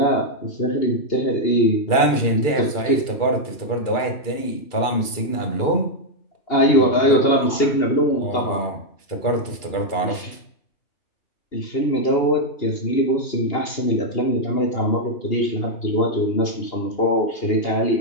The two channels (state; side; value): late; right; 2.8 ms